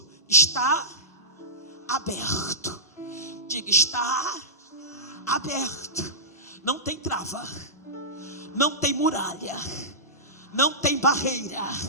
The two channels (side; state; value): both; normal; correlation -0.17